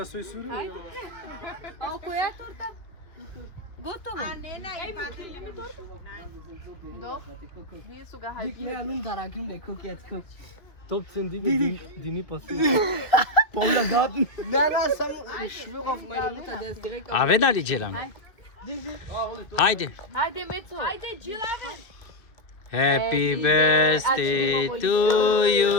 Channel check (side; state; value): right; late; 2.4 ms